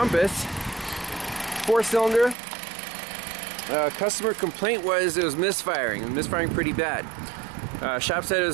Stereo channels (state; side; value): drops out; left; at 2.4 s